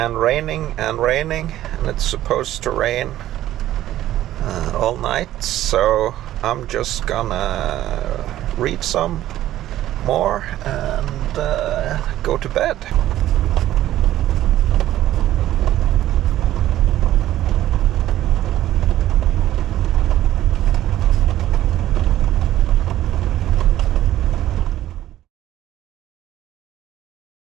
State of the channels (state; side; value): quieter; left; 13.5 dB